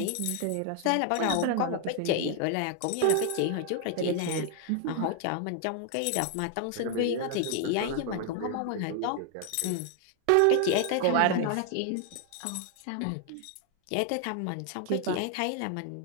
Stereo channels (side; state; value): both; different; correlation 0.00